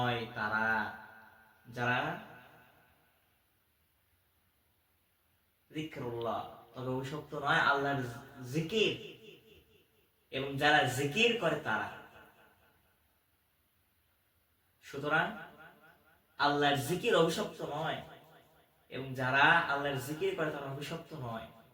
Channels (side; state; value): both; identical; correlation 1.00